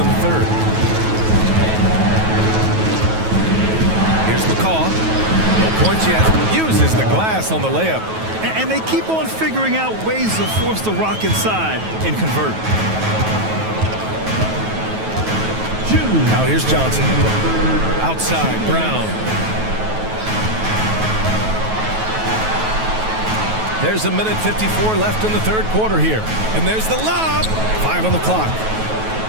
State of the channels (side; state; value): left; late; 9.3 ms